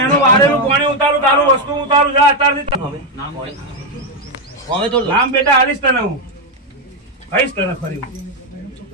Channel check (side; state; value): both; normal; correlation 0.04